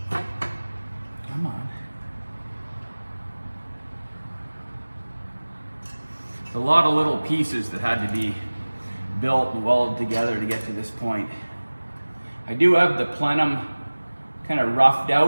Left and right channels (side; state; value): both; inverted; correlation -1.00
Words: Come on. It's a lot of little pieces that had to be built and welded together to get to this point. I do have the plenum kind of roughed